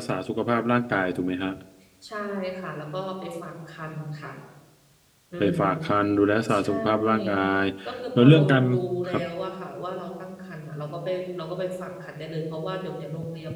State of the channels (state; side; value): identical; both; correlation 1.00